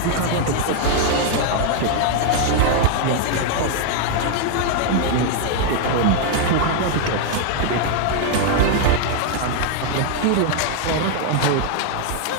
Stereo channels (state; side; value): different; both; correlation 0.00